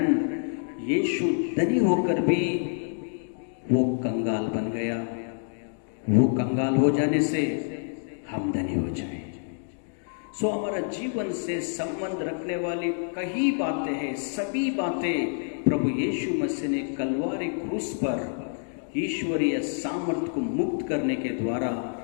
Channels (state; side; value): silent; right; digital silence